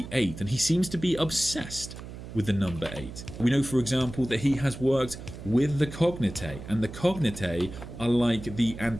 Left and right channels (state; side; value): noise; right; hum, 12 dB below the sound